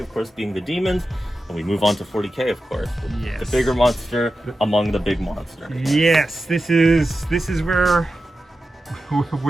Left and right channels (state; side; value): normal; both; correlation 0.92